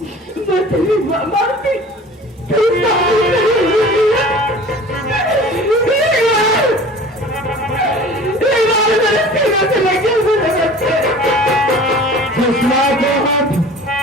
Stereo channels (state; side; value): normal; both; correlation 0.43